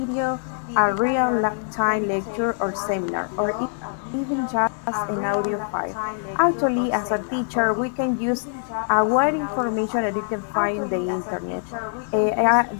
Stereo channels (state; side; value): silent; right; digital silence